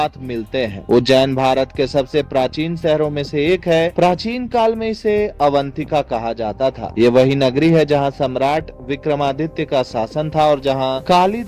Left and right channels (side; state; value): both; identical; correlation 1.00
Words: मिलते हैं। उज्जैन भारत के सबसे प्राचीन शहरों में से एक है। प्राचीन काल में इसे अवंतिका कहा जाता था। ये वही नगरी है जहां सम्राट विक्रमादित्य का शासन था और जहां